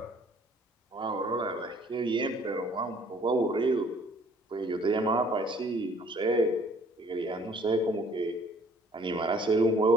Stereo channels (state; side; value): normal; both; correlation 0.58